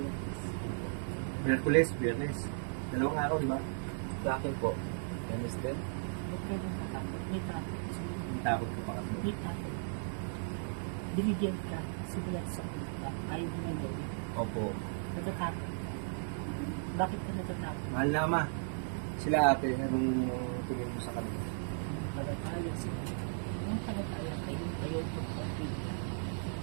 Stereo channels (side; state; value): left; silent; digital silence